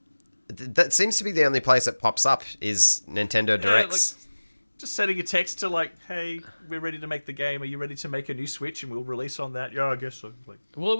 That seems to be the only place it pops up is Nintendo Directs. just sending a text to like, hey, we're ready to make the game. Are you ready to make a new Switch and we'll release on that? Yeah, I guess so. Like, Well, it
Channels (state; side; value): inverted; both; correlation -1.00